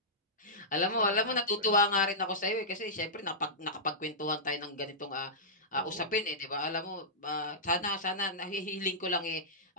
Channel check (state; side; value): normal; both; correlation -0.14